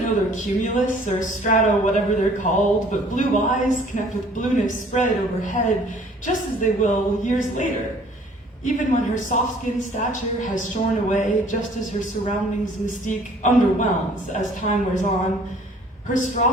know they're cumulus or strato, whatever they're called, but blue eyes connect with blueness spread overhead, just as they will years later. Even when her soft-skinned stature has shorn away, just as her surroundings' mystique underwhelms as time wears on, her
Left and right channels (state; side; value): normal; both; correlation 0.55